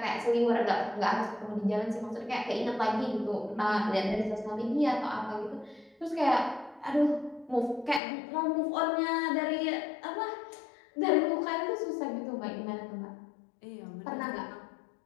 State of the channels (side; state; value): right; drops out; at 8.0 s